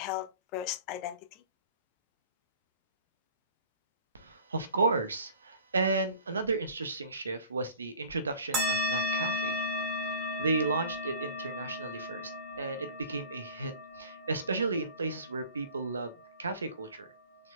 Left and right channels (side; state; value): both; inverted; correlation -0.45